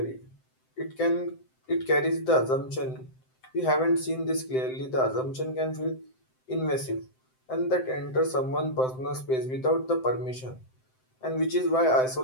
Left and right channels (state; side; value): late; right; 7.7 ms